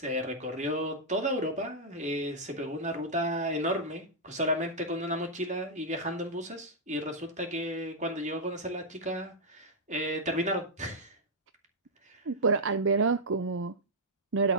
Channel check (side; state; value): both; normal; correlation -0.07